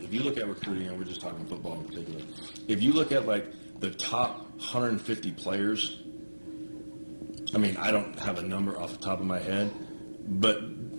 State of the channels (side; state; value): both; inverted; correlation -1.00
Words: if you look at recruiting, and we're just talking football in particular, if you look at like the top 150 players, I mean, I don't have a number off the top of my head, but